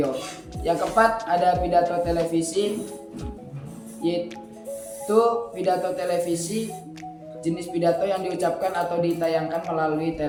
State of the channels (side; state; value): both; identical; correlation 1.00